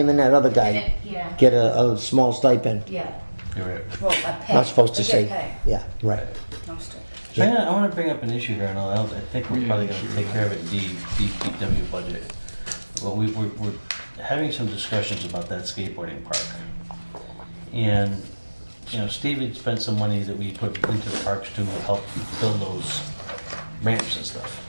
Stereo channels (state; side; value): inverted; both; correlation -1.00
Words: and that other guy Yeah, get a small stipend. yeah. You're right. Well, a pay. Not supposed to They say. get pay. Yeah, right. No stipend. So I want to bring up an issue here, and I think we're probably going to take care of it in DPW budget. Well, we're having some discussions about that skateboarding park. And, Steve had spent some money that we put into the parks to help build those ramps and stuff.